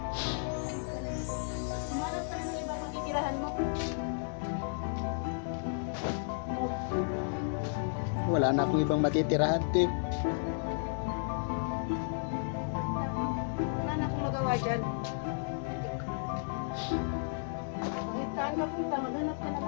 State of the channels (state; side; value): silent; right; digital silence